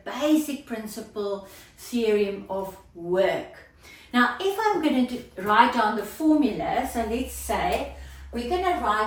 basic principle theorem of work. Now if I'm going to write down the formula, so let's say we're going to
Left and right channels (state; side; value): identical; both; correlation 1.00